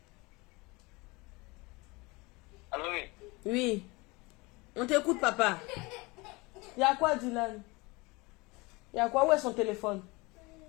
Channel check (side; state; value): right; quieter; 24.8 dB